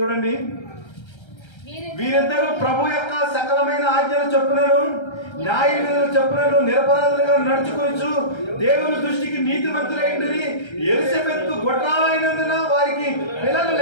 వీరిద్దరూ ప్రభు యొక్క సకలమైన ఆజ్ఞల చొప్పునను న్యాయ విధుల చొప్పునను నిరపరాధులుగా నడుచుకొనుచు దేవుని దృష్టికి నీతిమంతులైందని ఎలిజబెత్ గొడ్రాలైనందున వారికి పిల్లలు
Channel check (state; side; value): late; right; 1.3 ms